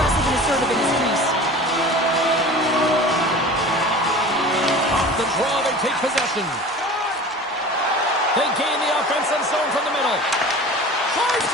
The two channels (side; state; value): both; normal; correlation 0.38